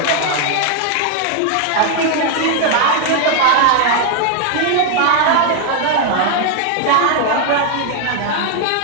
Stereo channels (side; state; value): both; different; correlation 0.00